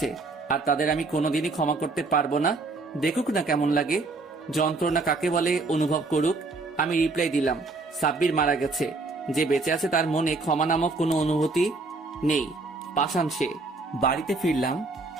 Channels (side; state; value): left; quieter; 3.5 dB